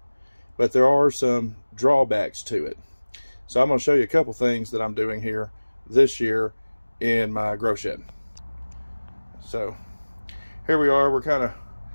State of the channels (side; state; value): both; inverted; correlation -1.00